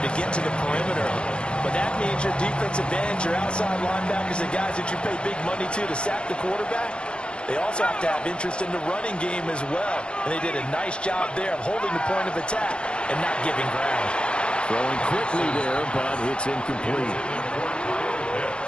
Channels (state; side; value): late; right; 0.055 ms